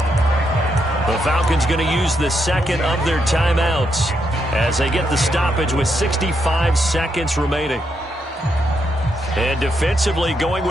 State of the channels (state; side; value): normal; both; correlation 0.80